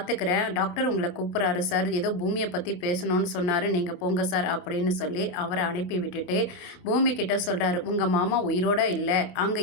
டாக்டர் உங்களை கூப்பிட்றாரு சார், ஏதோ பூமியை பற்றி பேசணும்னு சொன்னார், நீங்கள் போங்க சார் அப்படின்னு சொல்லி அவரை அனுப்பி விட்டுட்டு பூமி கிட்ட சொல்கிறாரு, உங்கள் மாமா உயிரோட இல்லை,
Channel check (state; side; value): late; right; 28 ms